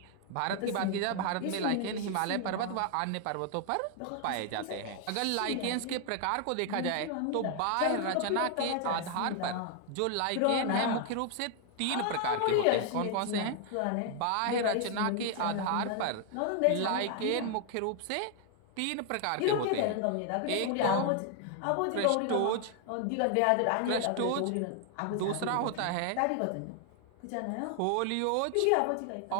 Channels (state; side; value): different; both; correlation 0.00